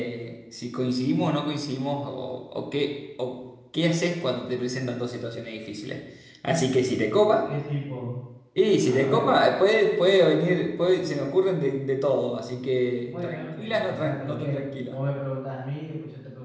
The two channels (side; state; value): both; identical; correlation 1.00